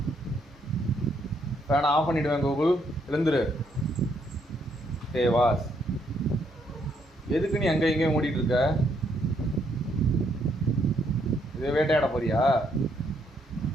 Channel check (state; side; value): normal; both; correlation 0.73